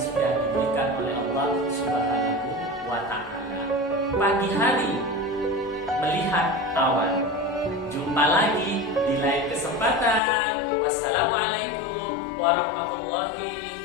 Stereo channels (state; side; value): drops out; right; at 10.2 s